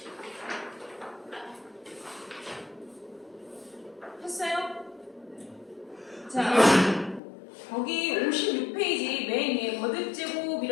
했어요? 자, 거기 56페이지 맨 위에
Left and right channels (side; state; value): right; drops out; at 7.2 s